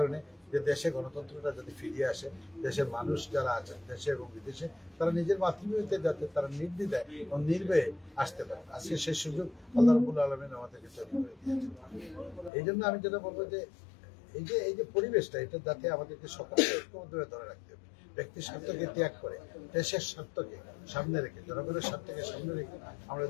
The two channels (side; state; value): right; drops out; at 12.5 s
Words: যে দেশে গণতন্ত্রটা যাতে ফিরিয়ে আসে, দেশের মানুষ যারা আছেন দেশে এবং বিদেশে তারা নিজের মাতৃভূমিতে যাতে তারা নির্দ্বিধায় এবং নির্ভয়ে আসতে পারে। আজকে সেই সুযোগ আল্লাহ রাব্বুল আলামিন আমাদেরকে তৈরি করে দিয়েছেন। এই জন্য আমি যেটা বলবো যে এই যে পরিবেশটা, এটা যাতে আমাদেরকে সকলকে ঐক্যবদ্ধভাবে ধরে রাখতে হবে। ব্যক্তির স্বার্থকে ত্যাগ করে দেশের স্বার্থকে সামনে রেখে, জনগণের স্বার্থকে সামনে রেখে আমরা